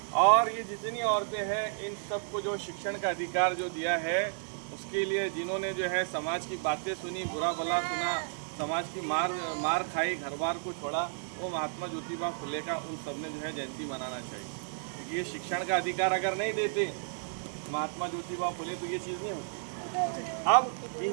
और ये जितनी औरतें हैं इन सबको जो शिक्षण का अधिकार जो दिया है उसके लिए जिन्होंने जो है समाज की बातें सुनी, बुरा भला सुना, समाज की मार खाई, घर बार को छोड़ा, वो महात्मा ज्योतिबा फुले का उन सब ने जो है जयंती मनाना चाहिए। ये शिक्षण का अधिकार अगर नहीं देते महात्मा ज्योतिबा फुले तो ये चीज़ नहीं होती। अब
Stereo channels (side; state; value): left; silent; 56 dB below the other